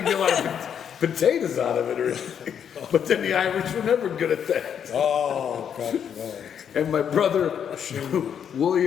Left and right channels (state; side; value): quieter; right; 8.3 dB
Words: get a lot of potatoes out of it or anything. But then the Irish were never good at that. oh, God, no. And my brother,